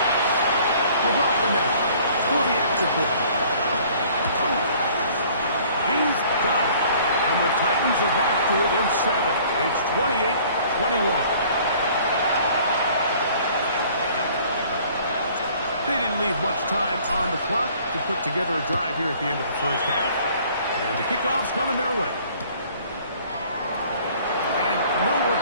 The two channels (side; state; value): both; inverted; correlation -0.54